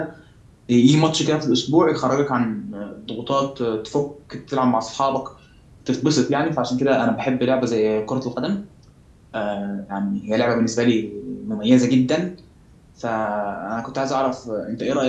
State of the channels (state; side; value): identical; both; correlation 1.00